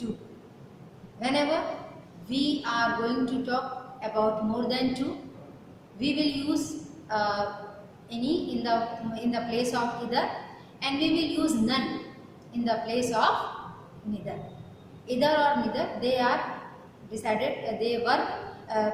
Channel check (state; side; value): identical; both; correlation 1.00